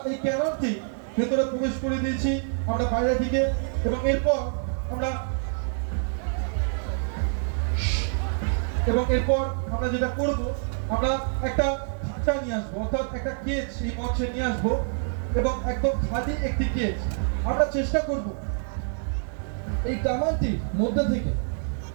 এই ক্যাননটি ভেতরে প্রবেশ করে দিয়েছি আমরা বাইরে থেকে, এবং এরপর আমরা যেটা করব, আমরা একটা খাঁচা নিয়ে আসবো, অর্থাৎ একটা কেজ এই মঞ্চে নিয়ে আসবো এবং একদম খালি একটি কেজ। আমরা চেষ্টা করব এই কামানটির মধ্যে থেকে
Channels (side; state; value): left; silent; 60 dB below the other